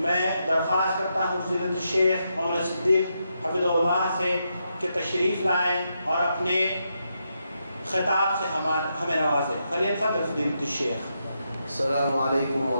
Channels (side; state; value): both; inverted; correlation -0.83